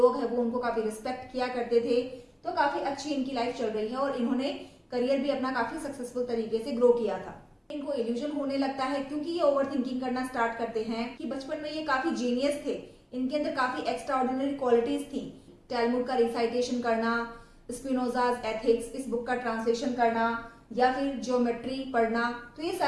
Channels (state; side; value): identical; both; correlation 1.00